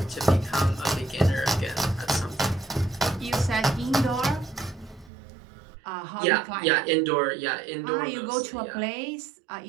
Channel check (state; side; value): drops out; left; at 5.1 s